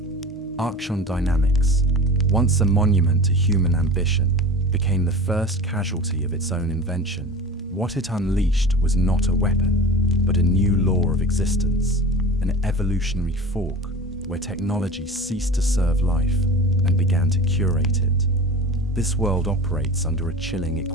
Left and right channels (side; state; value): both; normal; correlation 0.35